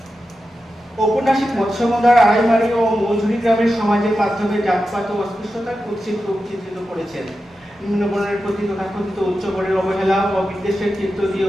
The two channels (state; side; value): normal; both; correlation 0.91